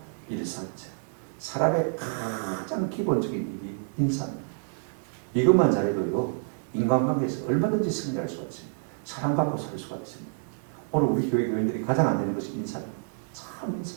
일사자. 사람의 가장 기본적인 일이 인사입니다. 이것만 잘해도요, 인간관계에서 얼마든지 승리할 수가 있습니다. 사랑받고 살 수가 있습니다. 오늘 우리 교회 교인들이 가장 안 되는 것이 인사입니다. 참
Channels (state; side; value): silent; left; digital silence